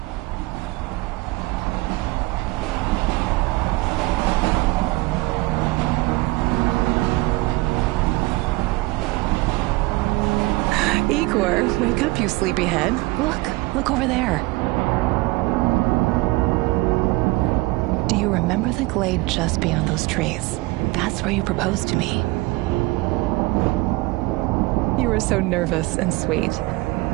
Igor, wake up, you sleepyhead. Look over there. Do you remember the glade just beyond those trees? That's where you proposed to me. You were so nervous and sweet.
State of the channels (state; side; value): quieter; left; 22.1 dB